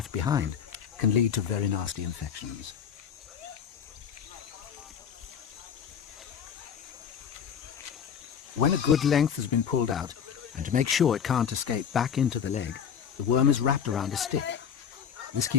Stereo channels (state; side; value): quieter; right; 7.8 dB